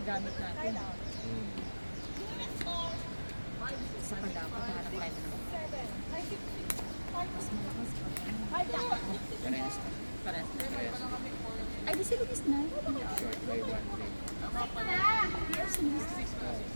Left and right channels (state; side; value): inverted; both; correlation -1.00